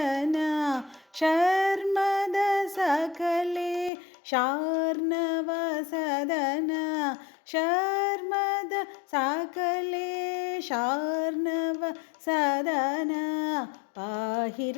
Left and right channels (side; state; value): right; drops out; at 3.9 s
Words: शर्मद सकले शार्णव सदन शर्मद सकले शार्णव सदन पाहि